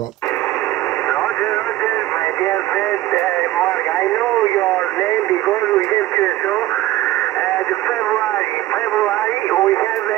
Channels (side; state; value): left; quieter; 15.6 dB